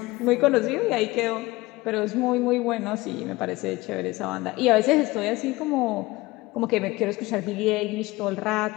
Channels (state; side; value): quieter; right; 20.5 dB